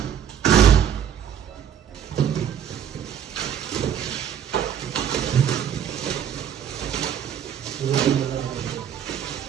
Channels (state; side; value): quieter; left; 8.9 dB